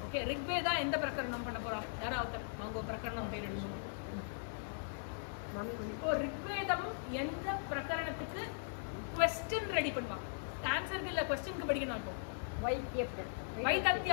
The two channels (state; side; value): silent; right; digital silence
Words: ஓகே, ரிக்வேதா எந்த பிரகரணம் பண்ண போறோம்? யாராவது வாங்க பிரகரணம் பேர் எழுதுவோம். இப்போ ரிக்வேதம் எந்த பிரகரணத்துக்கு क्वेश्चन ரெடி பண்ணுவாங்க. ஆன்சருக்கு இல்ல क्वेश्चनக்கு படிக்கணும். இப்போ வைத்தத்ய